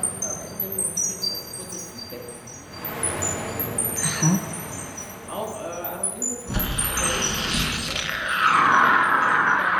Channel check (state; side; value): identical; both; correlation 1.00